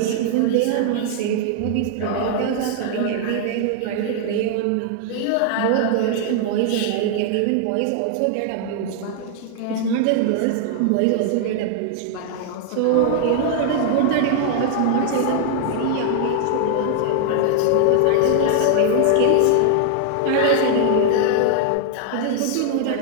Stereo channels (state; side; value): different; both; correlation 0.00